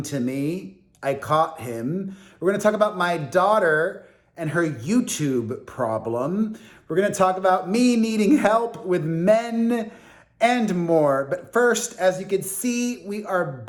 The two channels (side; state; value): both; identical; correlation 1.00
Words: to me. I caught him. We're going to talk about my daughter and her YouTube problem. We're going to talk about me needing help with men and more. But first, as you can see, we are